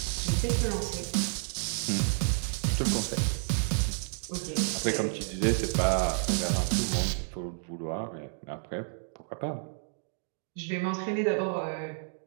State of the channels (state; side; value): silent; left; digital silence